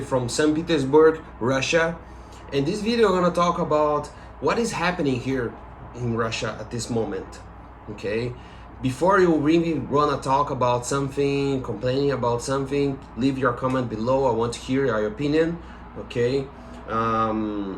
from St. Petersburg, Russia. In this video, I'm gonna talk about what is happening here in Russia at this moment. Okay, before you really wanna talk about something, complaining about something, leave your comment below. I want to hear your opinion. Okay,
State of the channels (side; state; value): both; identical; correlation 1.00